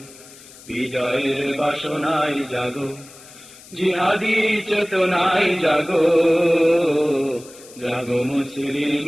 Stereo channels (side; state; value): left; noise; hiss, 20 dB below the sound